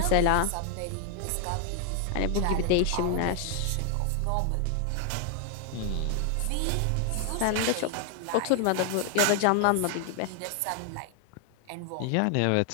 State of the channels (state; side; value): different; both; correlation 0.00